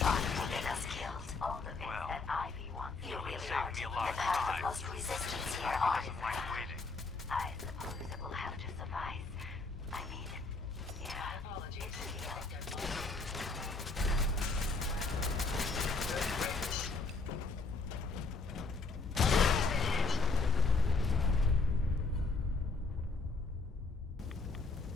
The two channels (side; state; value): right; quieter; 3.8 dB